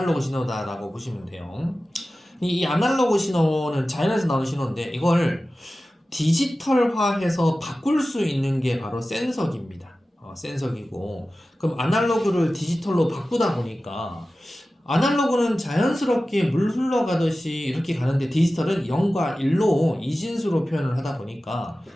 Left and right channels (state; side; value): normal; both; correlation 0.95